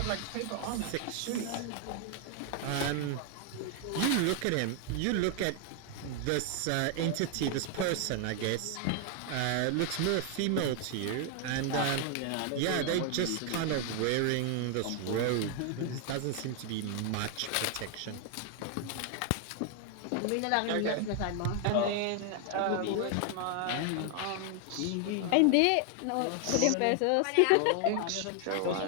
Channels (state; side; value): different; both; correlation 0.00